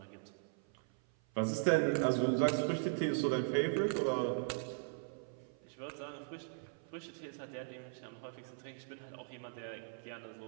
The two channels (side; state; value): left; silent; 52 dB below the other